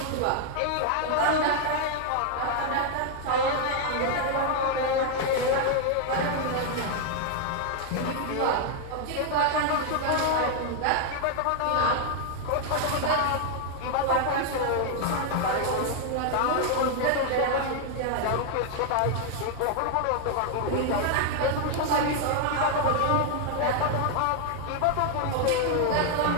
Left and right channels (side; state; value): both; different; correlation 0.00